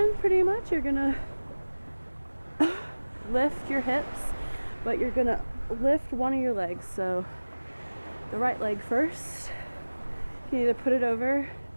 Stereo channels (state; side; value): inverted; both; correlation -1.00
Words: pretty much. You're gonna lift your hips, but you're gonna lift one of your legs. So, the right leg first. You can either put it over